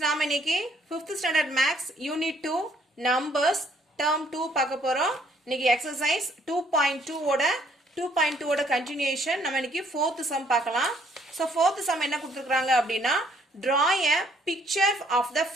நாம இன்னைக்கு 5th standard maths unit 2 numbers term 2 பார்க்க போறோம். இன்னைக்கு exercise 2.2 ஓட continuation. நம்ம இன்னைக்கு 4th sum பார்க்கலாம். So 4th sum என்ன கொடுத்திருக்காங்க அப்படினா draw a picture of the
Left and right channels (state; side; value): normal; both; correlation 0.65